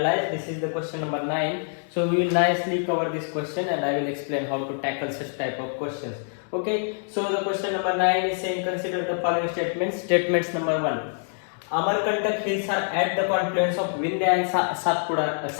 This is the question number 9. So we will nicely cover this question and I will explain how to tackle such type of questions. Okay, so the question number 9 is saying consider the following statements. Statements number 1. Amarkantak hills are at the confluence of Vindhya and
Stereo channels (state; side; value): silent; right; 61 dB below the other